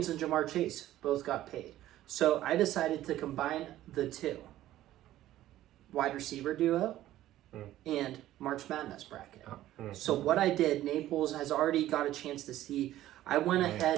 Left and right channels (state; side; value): quieter; left; 14.0 dB